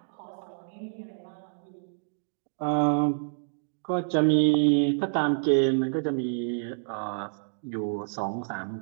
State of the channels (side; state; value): left; silent; digital silence